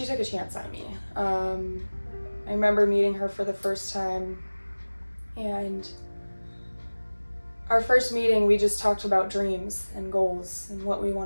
took a chance on me. I remember meeting her for the first time, and our first meeting, we just talked about dreams and goals and what we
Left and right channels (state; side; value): inverted; both; correlation -1.00